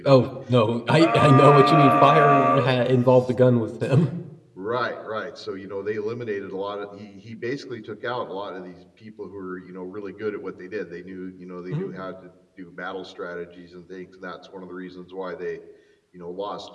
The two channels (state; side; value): identical; both; correlation 1.00